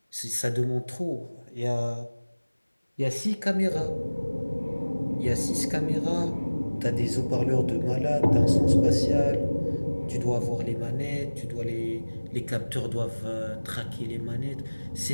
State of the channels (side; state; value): both; inverted; correlation -1.00